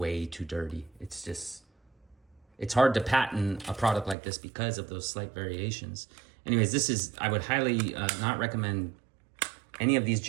too dirty. It's hard to patent a product like this because of those slight variations. Anyways, I would highly not recommend any of these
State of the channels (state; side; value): drops out; left; at 4.2 s